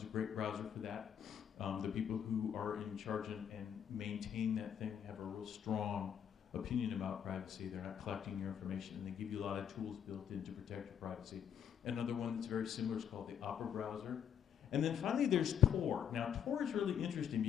a great browser for that. The people who are in charge and maintain that thing have a real strong opinion about privacy. They're not collecting your information, and they give you a lot of tools built in to protect your privacy. Another one that's very similar is called the Opera browser. And then finally there's Tor. Now Tor is really interesting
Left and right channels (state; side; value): quieter; right; 8.7 dB